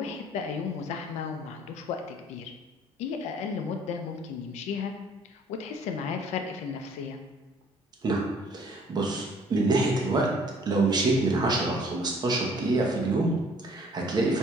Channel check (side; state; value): both; normal; correlation 0.57